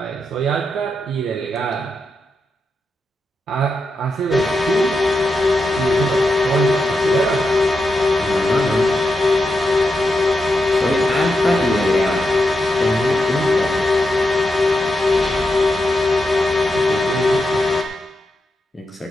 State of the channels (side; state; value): both; normal; correlation 0.86